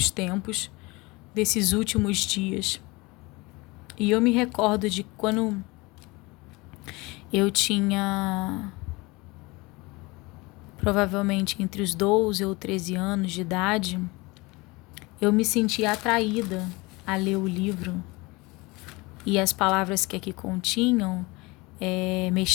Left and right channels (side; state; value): right; quieter; 24.0 dB